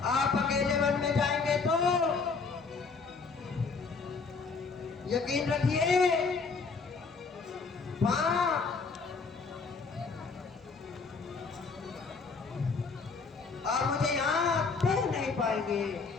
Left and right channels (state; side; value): quieter; right; 4.6 dB